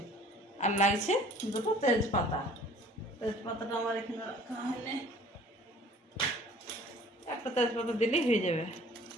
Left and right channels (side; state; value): both; normal; correlation 0.51